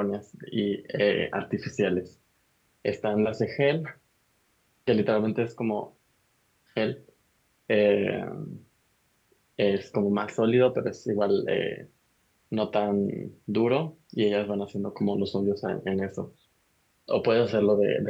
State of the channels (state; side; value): identical; both; correlation 1.00